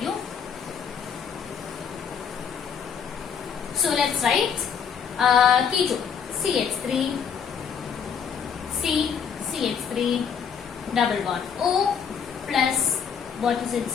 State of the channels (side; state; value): right; quieter; 7.0 dB